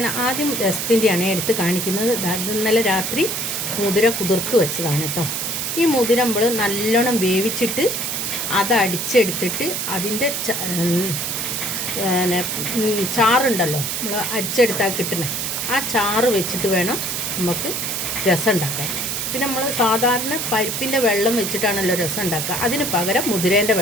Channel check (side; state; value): right; noise; hiss, 2 dB below the sound